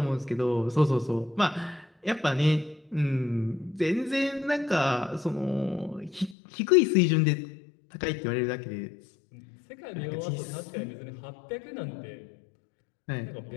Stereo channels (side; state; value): right; drops out; at 6.4 s